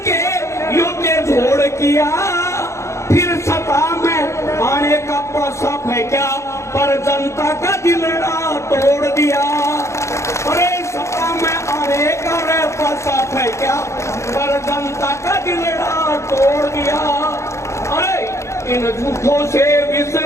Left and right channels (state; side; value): late; right; 0.14 ms